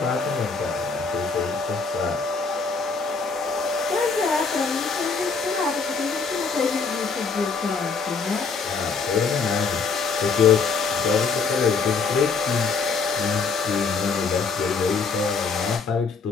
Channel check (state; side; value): quieter; right; 4.9 dB